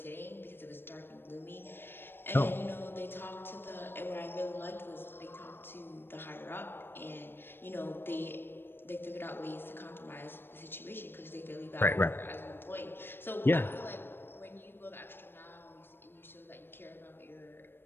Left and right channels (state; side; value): late; right; 0.10 ms